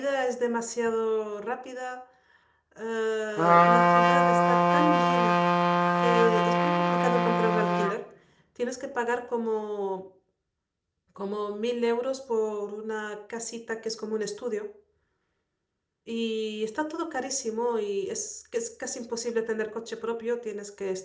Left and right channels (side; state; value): both; identical; correlation 1.00